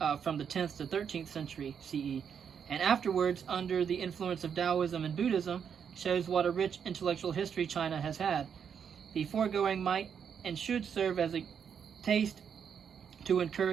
from the 10th to 13th century CE, and afterwards under the influence of Taoism and Buddhism, shows what a rich intellectual history China has had. The foregoing might and should serve as a taste to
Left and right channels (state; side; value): quieter; left; 7.4 dB